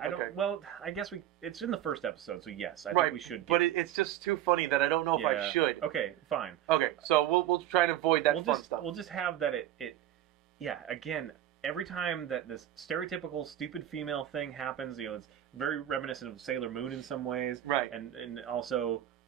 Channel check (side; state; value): left; quieter; 12.2 dB